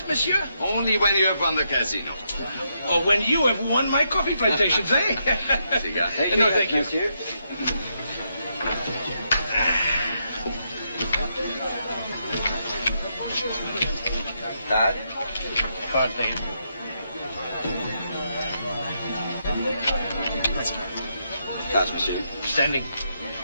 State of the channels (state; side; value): inverted; both; correlation -0.80